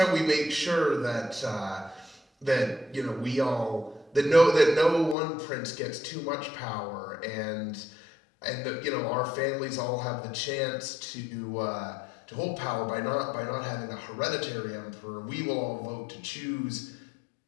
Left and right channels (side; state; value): right; drops out; at 5.2 s